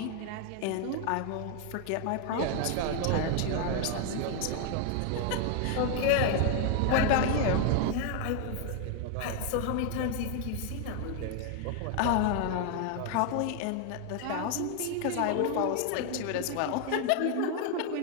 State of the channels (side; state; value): both; different; correlation 0.00